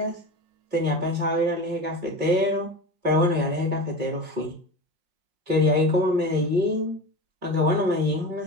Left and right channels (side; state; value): left; late; 5.5 ms